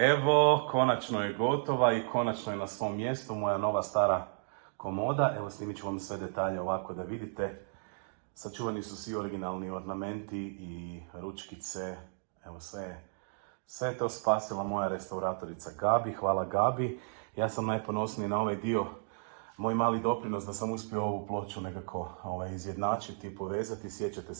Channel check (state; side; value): silent; left; digital silence